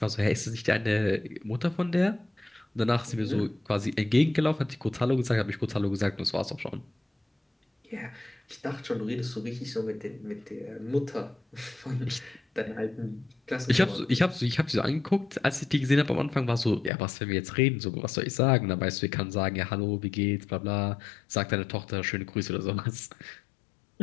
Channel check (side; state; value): right; drops out; at 16.9 s